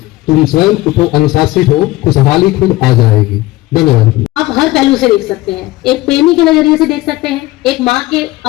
तुम स्वयं उठो, अनुशासित हो, खुशहाली खुद आ जाएगी। धन्यवाद। आप हर पहलू से देख सकते हैं, एक प्रेमी के नजरिए से देख सकते हैं, एक माँ के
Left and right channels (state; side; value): quieter; right; 18.5 dB